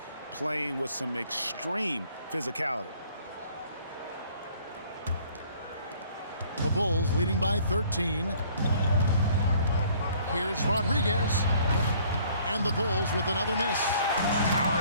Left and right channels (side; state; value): both; inverted; correlation -0.58